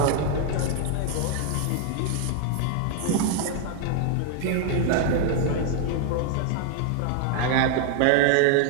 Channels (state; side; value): different; both; correlation 0.00